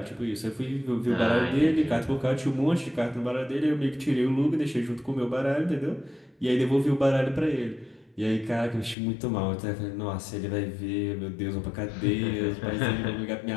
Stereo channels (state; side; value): drops out; right; at 9.0 s